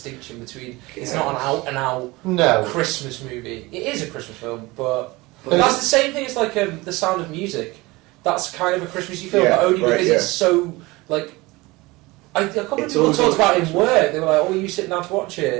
between it's not an out and out No. Christmas movie. It is a Christmas film, but that's the same thing as like The Sound of Music. That's kind of a Christmassy film, Yeah, but only right, because yeah. it's so like. I can't remember It's people always talked about it like in work. They were like, "Oh, you sitting down to watch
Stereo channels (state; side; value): quieter; left; 22.0 dB